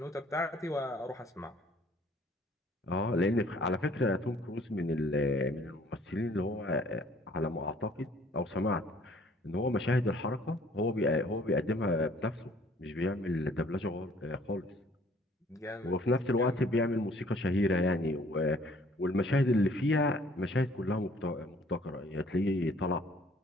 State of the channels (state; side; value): normal; both; correlation 0.58